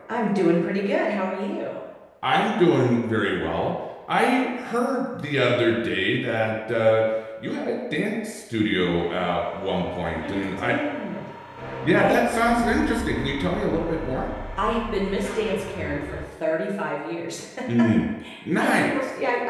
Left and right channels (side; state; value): both; identical; correlation 1.00